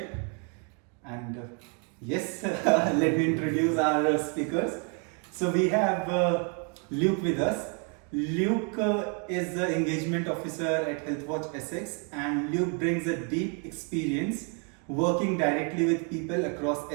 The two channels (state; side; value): quieter; left; 36.9 dB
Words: And yes, let me introduce our speakers. So we have Luke with us. Luke is the engagement officer at Healthwatch Essex, and Luke brings a deep experience working directly with people across